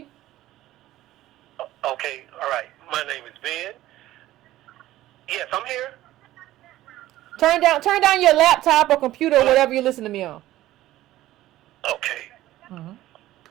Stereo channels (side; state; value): left; quieter; 15.1 dB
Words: Okay, all right. My name is Ben. Yes, I'm here. Turn down your laptop or computer or whatever you listen to me on. Okay. Mm-hmm.